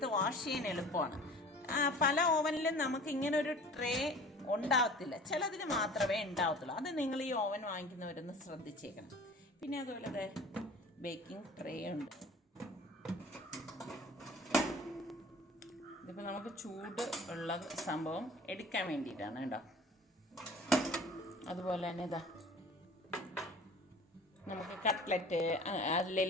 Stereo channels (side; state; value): both; normal; correlation 0.44